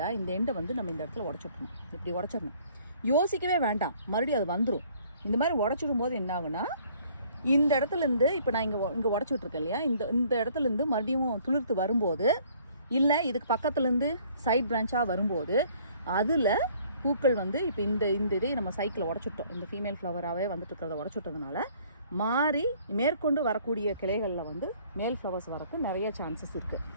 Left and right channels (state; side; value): inverted; both; correlation -0.58